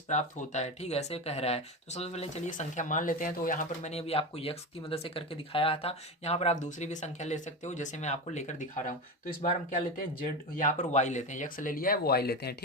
प्राप्त होता है। ठीक है, ऐसे कह रहा है। तो सबसे पहले चलिए संख्या मान लेते हैं। तो यहाँ पर मैंने अभी आपको यक्स की मदद से करके दिखाया था, यहाँ पर आप दूसरी भी संख्या ले सकते हो, जैसे मैं आपको लेकर दिखा रहा हूँ। तो इस बार हम क्या लेते हैं, जेड, यहाँ पर वाई लेते हैं, यक्स ले लिया है, वो वाई लेते हैं।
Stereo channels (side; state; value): both; normal; correlation 0.21